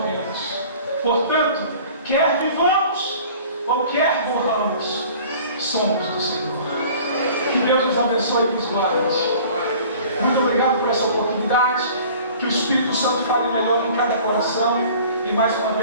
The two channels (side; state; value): both; inverted; correlation -0.47